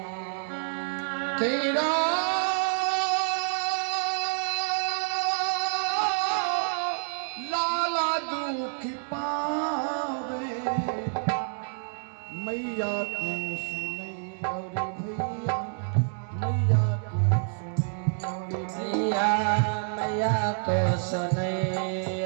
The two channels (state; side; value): silent; left; digital silence